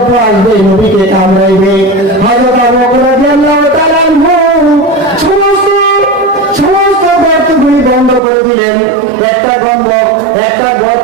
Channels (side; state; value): left; drops out; at 8.2 s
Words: আসবে, নবীকে কামড়াইবে। হযরত আবু বকর রাদিয়াল্লাহু তাআলা আনহু সমস্ত গর্তগুলি বন্ধ করে দিলেন। একটা